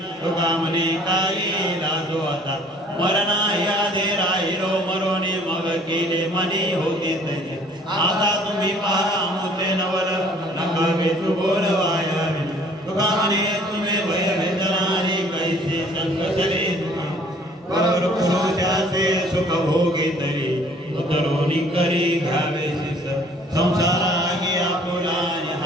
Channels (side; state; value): both; normal; correlation 0.56